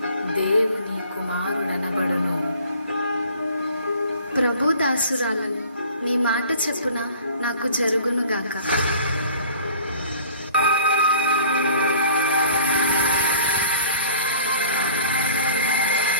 దేవుని కుమారుడనబడును. ప్రభు దాసురాలను, నీ మాట చెప్పున నాకు జరుగునుగాక.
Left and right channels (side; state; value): both; inverted; correlation -0.49